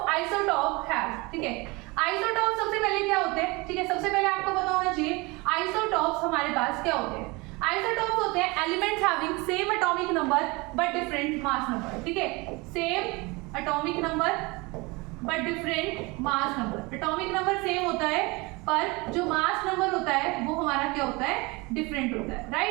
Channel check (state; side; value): quieter; left; 25.3 dB